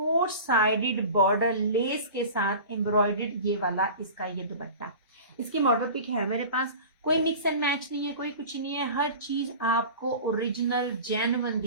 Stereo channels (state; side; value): inverted; both; correlation -0.37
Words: साइडेड बॉर्डर लेस के साथ एम्ब्रॉयडर्ड ये वाला इसका ये दुपट्टा। इसकी मॉडल पिक है मेरे पास। कोई मिक्स एंड मैच नहीं है, कोई कुछ नहीं है, हर चीज आपको ओरिजिनल जेन्युइन